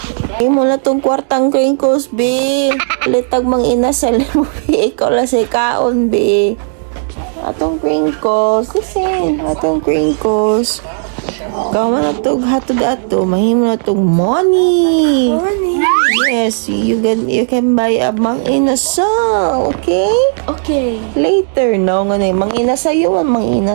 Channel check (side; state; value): left; silent; digital silence